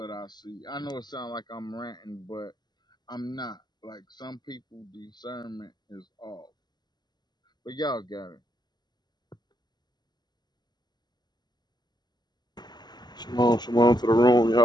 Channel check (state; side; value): late; right; 0.21 ms